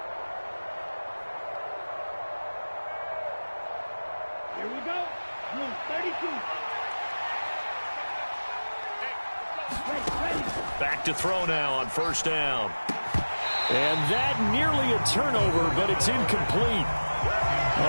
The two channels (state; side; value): inverted; both; correlation -1.00